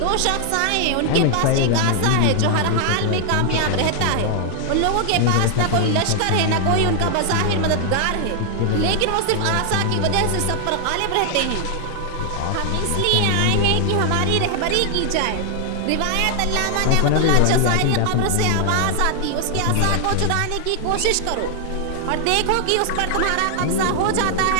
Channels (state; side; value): different; both; correlation 0.00